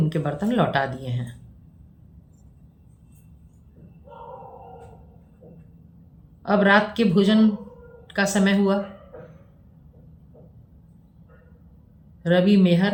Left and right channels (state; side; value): identical; both; correlation 1.00